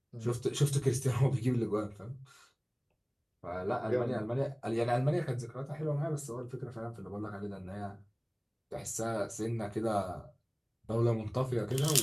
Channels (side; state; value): both; identical; correlation 1.00